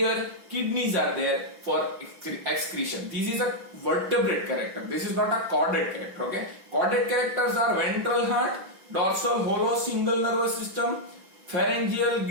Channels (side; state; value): left; late; 5.7 ms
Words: kidneys are there for excretion. This is a vertebrate character. This is not a chordate character, okay? Chordate characters are ventral heart, dorsal hollow single nervous system, pharyngeal